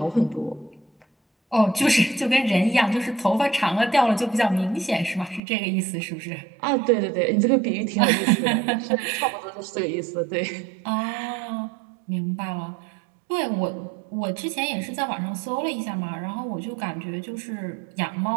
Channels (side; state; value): left; drops out; at 5.4 s